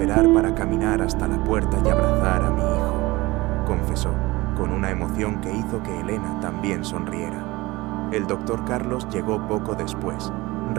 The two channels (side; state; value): left; quieter; 20.9 dB